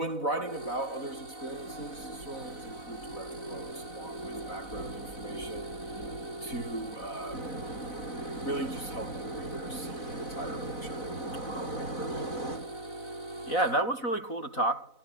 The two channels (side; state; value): right; late; 4.0 ms